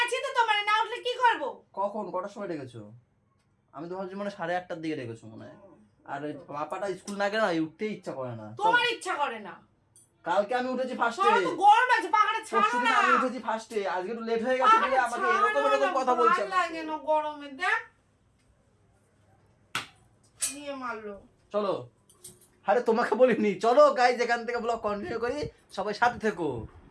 তো, তোমার না উঠলে কি করব? কখন কটার সময় ডেকেছো? আমি তো ভাবছি মানে 8:30টার দিকে ডেকেছো মনে হয়। আর ওই পাপাটা স্কুল না গেলে না উঠতেই ইচ্ছা করে না। তোমার ইচ্ছা করে না? কালকে আমি উঠেছি ফার্স্টে। তো গরম আছে, পাখাটা ছাড়ো না। আমি উঠেছি ফার্স্টে, আজকে একটু লেট হয়ে গেছে বলে আমাকে এরকম এরকম কথা বলছে। ভালো লাগে না গরমে, দেখ নিয়ে মারলো। চলো। আরে তোমাকে বলিনি, চলো গাইজ এখান থেকে ব্লগ কন্টিনিউ করি, সবাই সাথে থেকো।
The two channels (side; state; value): both; identical; correlation 1.00